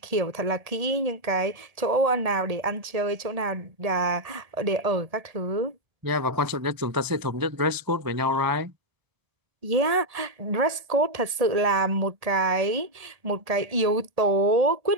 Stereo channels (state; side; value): late; left; 1.7 ms